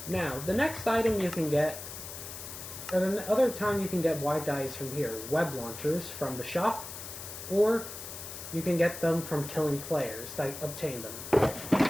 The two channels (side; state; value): left; noise; hiss, 10 dB below the sound